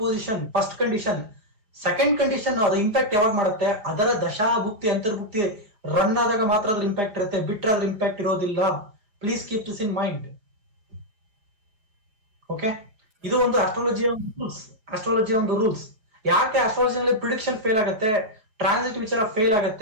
position first condition. Second condition, ಅದು ಇಂಪ್ಯಾಕ್ಟ್ ಯಾವಾಗ ಮಾಡುತ್ತೆ, ಅದರ ದಶಾ ಭುಕ್ತಿ ಅಂತರ್ಭುಕ್ತಿ ರನ್ ಆದಾಗ ಮಾತ್ರ ಅದ್ರ ಇಂಪ್ಯಾಕ್ಟ್ ಇರುತ್ತೆ, ಬಿಟ್ರೆ ಅದ್ರ ಇಂಪ್ಯಾಕ್ಟ್ ಇರೋದಿಲ್ಲ. Please keep this in mind. Okay, ಇದು ಒಂದು ಆಸ್ಟ್ರಾಲಜಿಯ ಒಂದು ರೂಲ್ಸ್. ಯಾಕೆ ಆಸ್ಟ್ರಾಲಜಿನಲ್ಲಿ ಪ್ರಿಡಿಕ್ಷನ್ ಫೇಲ್ ಆಗುತ್ತೆ, ಟ್ರಾನ್ಸಿಟ್ ವಿಚಾರ ಫೇಲ್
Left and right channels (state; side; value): late; left; 4.9 ms